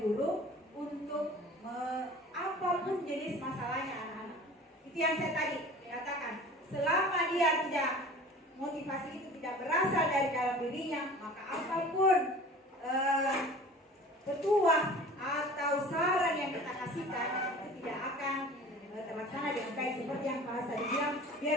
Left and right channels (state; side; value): normal; both; correlation 0.42